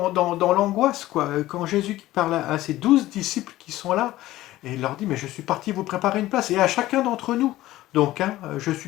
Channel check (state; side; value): quieter; right; 16.0 dB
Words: l'angoisse, quoi. Quand Jésus parle à ses 12 disciples qui sont là, et il leur dit, mais je suis parti vous préparer une place, et à chacun d'entre nous. Donc, hein, je suis